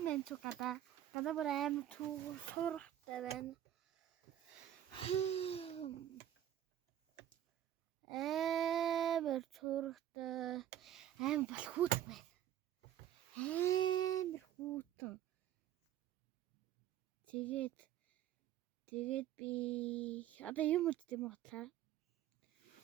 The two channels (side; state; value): left; quieter; 11.7 dB